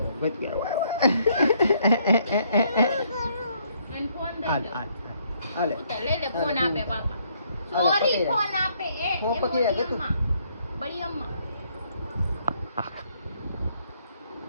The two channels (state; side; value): inverted; both; correlation -0.69